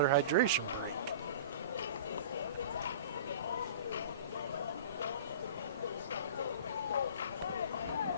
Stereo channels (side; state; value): both; inverted; correlation -0.38